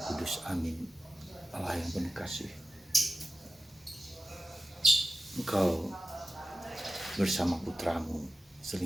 Kudus. Amin. Allah yang penuh kasih, Engkau bersama putramu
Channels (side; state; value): both; normal; correlation 0.94